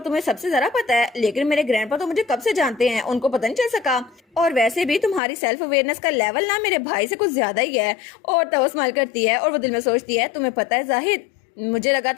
तुम्हें सबसे ज्यादा पता है, लेकिन मेरे ग्रैंडपा तो मुझे कब से जानते हैं, उनको पता नहीं चल सका, और वैसे भी तुम्हारी सेल्फ अवेयरनेस का लेवल ना मेरे भाई से कुछ ज्यादा ही है। और तब वो स्माइल करती है और वो दिल में सोचती है तुम्हें पता है जाहिद, मुझे लगा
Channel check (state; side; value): drops out; right; at 5.2 s